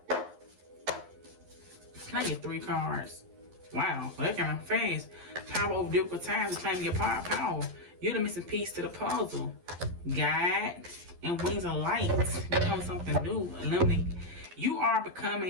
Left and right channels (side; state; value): left; late; 11 ms